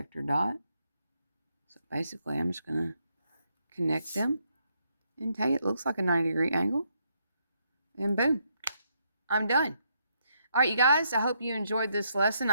dot. So basically, I'm just going to connect them and tell you it looks like a 90-degree angle. And boom, I'm done. All right, you guys, I hope you enjoyed this lesson.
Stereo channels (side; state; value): both; inverted; correlation -0.76